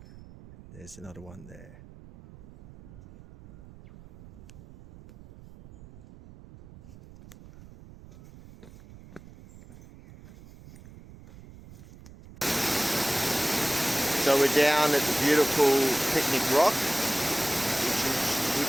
There's another one there. So we're down at the beautiful Picnic Rock,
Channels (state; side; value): noise; right; rumble, 20 dB below the sound